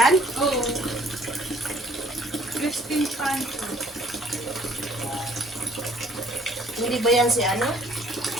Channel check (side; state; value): both; normal; correlation 0.59